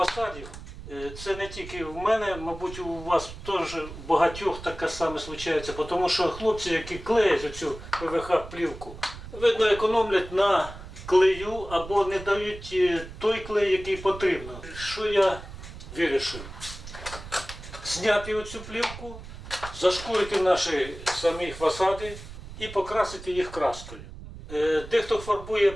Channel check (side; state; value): right; noise; rumble, 13 dB below the sound